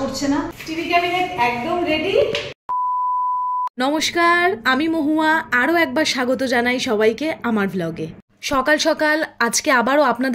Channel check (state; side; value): identical; both; correlation 1.00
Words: করছে না। টিভি ক্যাবিনেট একদম রেডি। নমস্কার, আমি মহুয়া। আরও একবার স্বাগত জানাই সবাইকে আমার ভ্লগে। সকাল সকাল আজকে আবারও